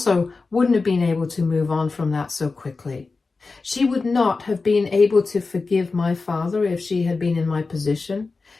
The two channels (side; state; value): right; quieter; 4.0 dB